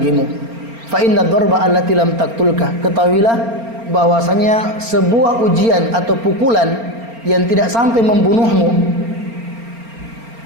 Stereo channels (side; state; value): left; late; 4.3 ms